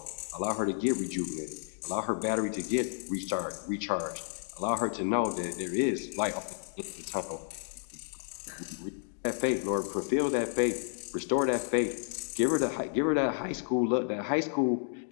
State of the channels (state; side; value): silent; right; digital silence